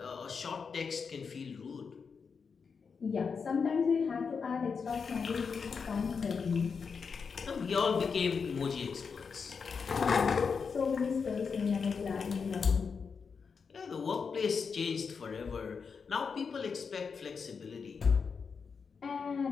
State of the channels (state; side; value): quieter; right; 5.6 dB